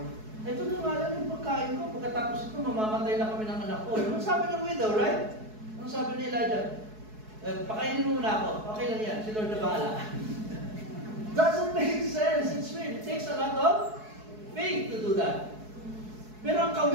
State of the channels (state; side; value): late; left; 4.7 ms